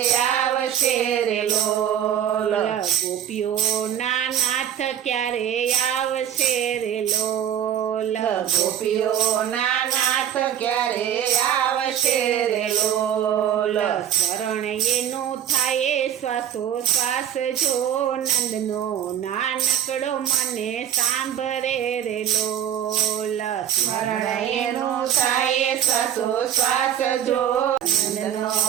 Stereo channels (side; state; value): left; quieter; 10.0 dB